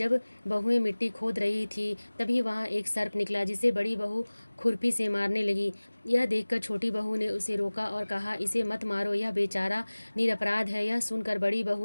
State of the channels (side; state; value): both; inverted; correlation -1.00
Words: बहुएं मिट्टी खोद रही थी तभी वहाँ एक सर्प निकला, जिसे बड़ी बहू खुरपी से मारने लगी। यह देखकर छोटी बहू ने उसे रोका और कहा, इसे मत मारो, यह बेचारा निरपराध है। यह सुनकर बड़ी